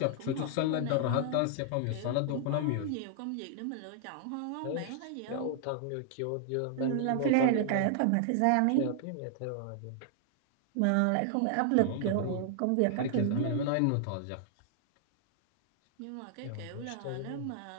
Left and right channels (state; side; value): different; both; correlation -0.01